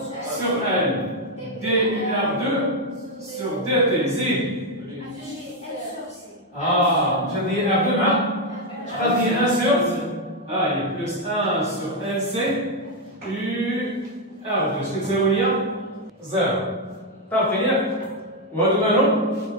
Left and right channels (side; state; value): both; normal; correlation 0.04